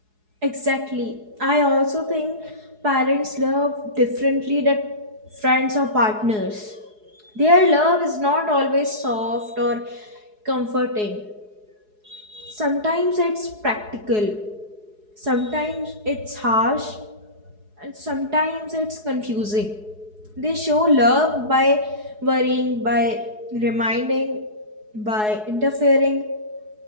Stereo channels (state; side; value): late; left; 4.7 ms